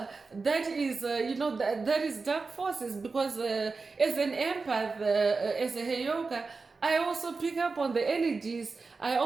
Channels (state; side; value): quieter; left; 4.2 dB